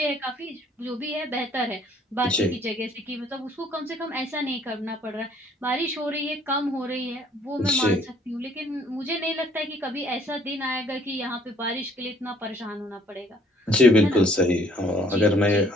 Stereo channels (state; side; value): normal; both; correlation 0.61